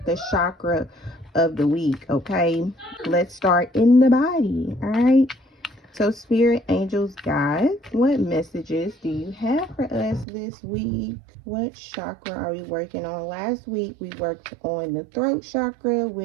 the chakra of the week. Okay, let's start in the body. All right, so spirit, angels, guides, what messages do you have for us this week? What chakra are we working on? Last week we worked on the throat chakra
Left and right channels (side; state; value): left; drops out; at 10.2 s